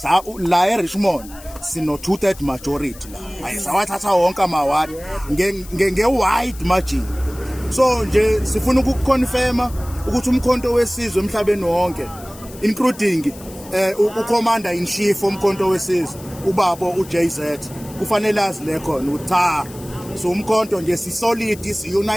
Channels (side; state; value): left; noise; hiss, 19 dB below the sound